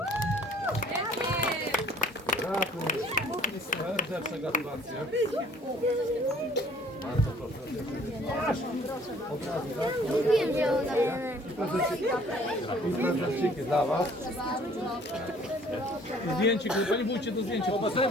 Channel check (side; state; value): both; normal; correlation 0.56